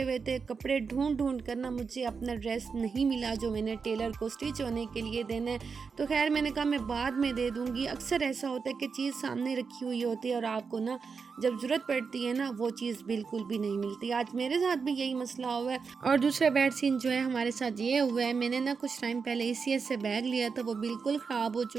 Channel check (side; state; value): left; quieter; 5.4 dB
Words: हुए थे, कपड़े ढूंढ कर ना मुझे अपना ड्रेस नहीं मिला जो मैंने टेलर को स्टिच होने के लिए देना है। तो खैर मैंने कहा मैं बाद में दे दूँगी। अक्सर ऐसा होता है कि चीज़ सामने रखी हुई होती है और आपको ना जब ज़रूरत पड़ती है ना वो चीज़ बिल्कुल भी नहीं मिलती। आज मेरे साथ भी यही मसला हुआ है। और दूसरा बैड सीन जो है हमारे साथ ये हुआ है, मैंने ना कुछ टाइम पहले ECS से बैग लिया था, वो बिल्कुल ख़राब हो